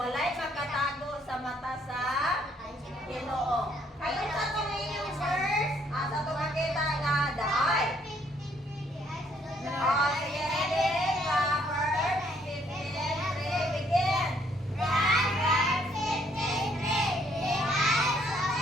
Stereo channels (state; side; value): normal; both; correlation 0.67